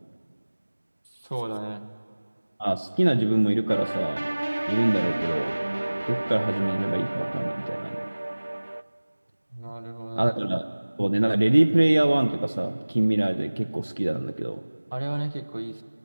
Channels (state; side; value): inverted; both; correlation -1.00